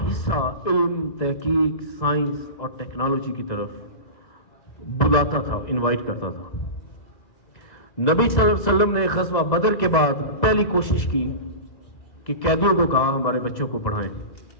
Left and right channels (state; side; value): late; right; 1.9 ms